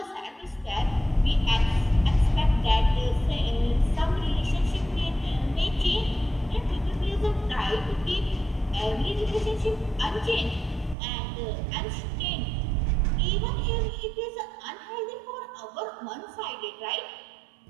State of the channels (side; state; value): left; drops out; at 11.0 s